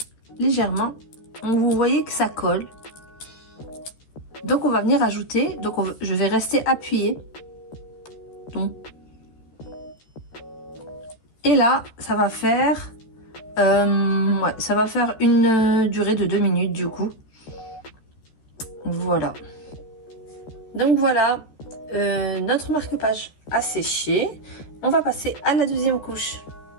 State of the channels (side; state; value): right; late; 13 ms